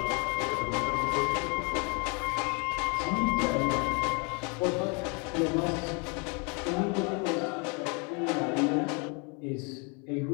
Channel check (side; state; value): right; quieter; 33.4 dB